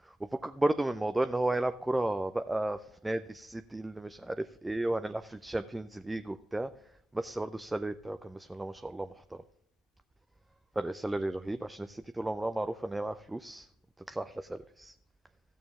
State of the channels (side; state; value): both; normal; correlation 0.98